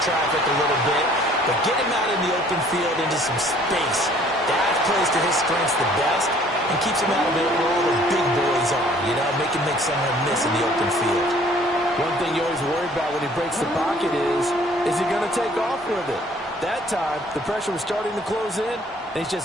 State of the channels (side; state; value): both; normal; correlation 0.57